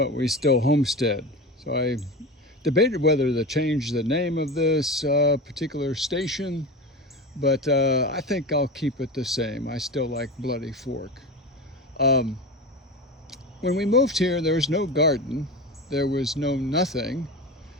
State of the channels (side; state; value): both; normal; correlation 0.26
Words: we still homestead. So I debated whether to change the name of this particular station, but I think I'll keep it the same. I still like Bloody Fork. Um, when we moved here, there was no garden, there was no nothing.